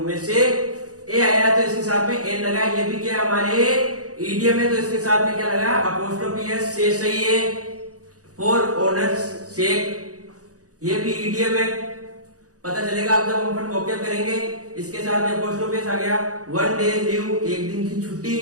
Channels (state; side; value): late; left; 0.67 ms